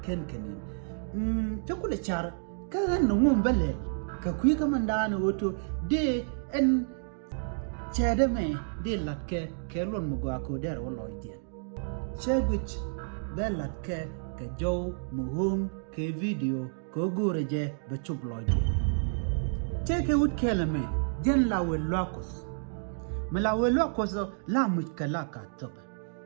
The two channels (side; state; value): left; silent; digital silence